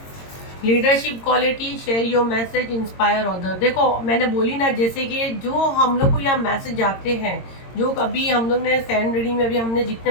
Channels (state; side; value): late; right; 22 ms